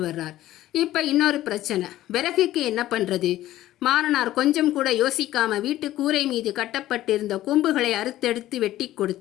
வர்றார். இப்போ இன்னொரு பிரச்சனை. விறகுக்கு என்ன பண்ணுறது? மாறனார் கொஞ்சம் கூட யோசிக்காம வீட்டு கூரை மீது கட்டப்பட்டிருந்த கொம்புகளை அறுத்தெடுத்து வெட்டி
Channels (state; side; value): quieter; right; 14.4 dB